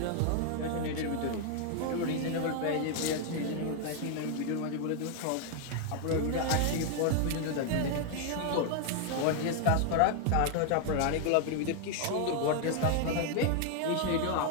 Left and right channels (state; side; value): different; both; correlation 0.00